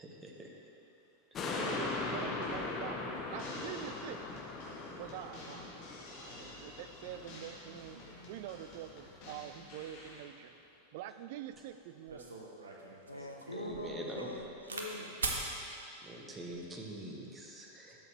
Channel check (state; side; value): normal; both; correlation 0.04